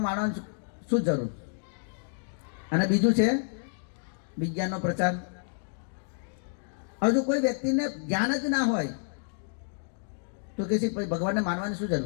માનવાની શું જરૂર? અને બીજું છે વિજ્ઞાનનો પ્રચાર. હવે જો કોઈ વ્યક્તિને જ્ઞાન જ ના હોય તો કે છે ભગવાનને માનવાની શું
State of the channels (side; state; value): right; silent; digital silence